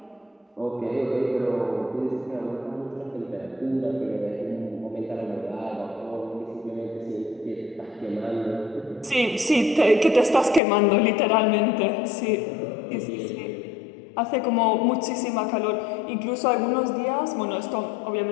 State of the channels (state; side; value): drops out; right; at 10.6 s